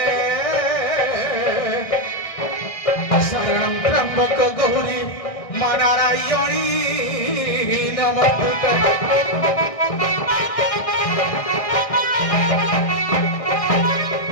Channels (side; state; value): right; late; 1.6 ms